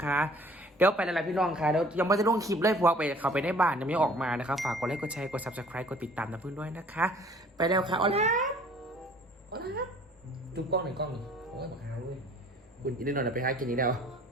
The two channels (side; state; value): both; normal; correlation 0.53